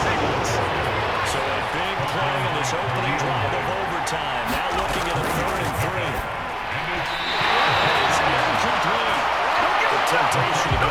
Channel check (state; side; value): identical; both; correlation 1.00